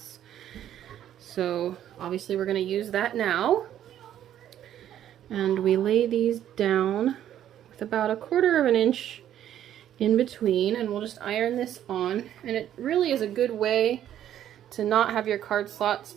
So obviously we're going to use that now, and we lay these down with about 1/4 inch in between, and we'll just iron this on. And it really is a good way to not have your card slots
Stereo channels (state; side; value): quieter; left; 11.1 dB